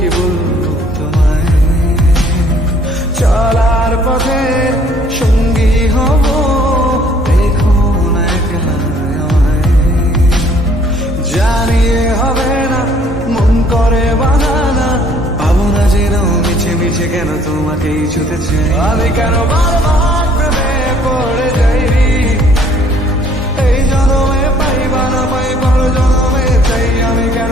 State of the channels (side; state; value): both; normal; correlation 0.60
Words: বলবো তোমায়। চলার পথে সঙ্গী হব, জানিয়ে হবে না মন করে বানানা। পাবো না জেনেও মিছে মিছে কেন তোমাকেই ছুতে চাই, আমি কেন বারবার প্রেমে পড়ে যাই। এই জন্মে পাই বা না পাই পর জন্মে চাই, আমি কেন